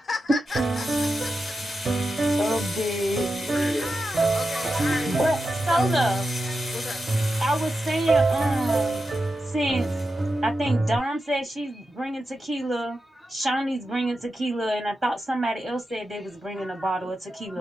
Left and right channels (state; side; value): normal; both; correlation 0.90